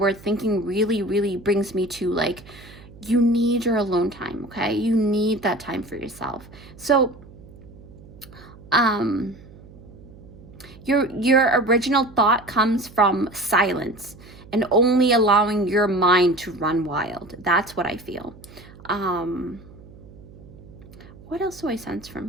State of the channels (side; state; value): right; noise; hum, 20 dB below the sound